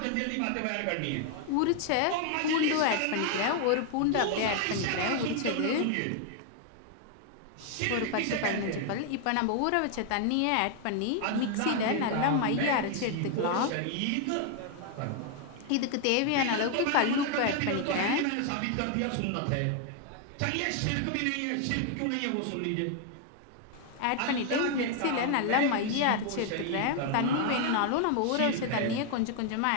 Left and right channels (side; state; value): both; different; correlation 0.00